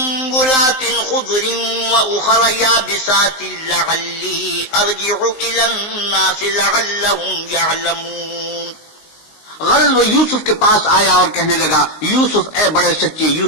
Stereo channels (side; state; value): right; late; 19 ms